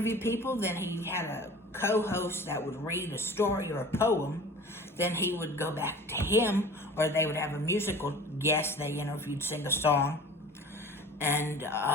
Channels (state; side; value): normal; both; correlation 0.42